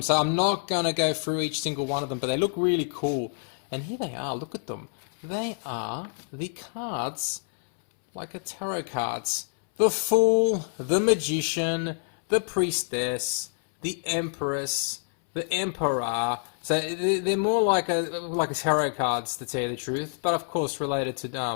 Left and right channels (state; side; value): silent; right; 60 dB below the other